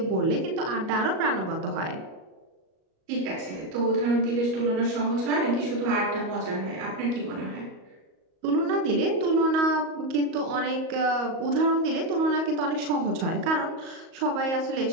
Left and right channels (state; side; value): late; left; 38 ms